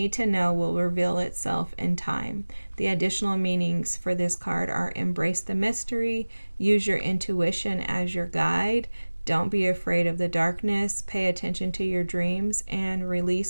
to know will reveal itself in time. The additional meanings for this card are embrace the mystery, use your intuition as your guide, don't be afraid of the darkness, pay attention to your dreams, and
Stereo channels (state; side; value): inverted; both; correlation -1.00